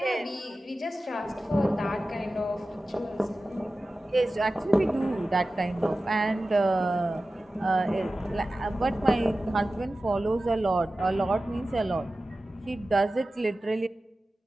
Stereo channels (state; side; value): normal; both; correlation 0.95